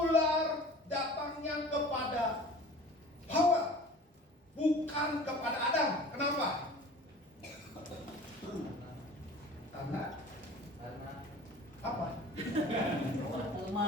datangnya kepada Hawa, bukan kepada Adam? Kenapa? Karena apa?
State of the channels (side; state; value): both; normal; correlation 0.43